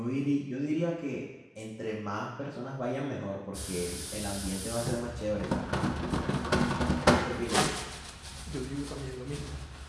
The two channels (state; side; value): identical; both; correlation 1.00